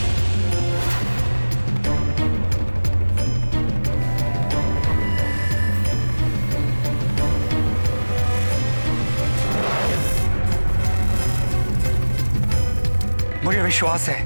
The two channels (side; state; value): both; inverted; correlation -1.00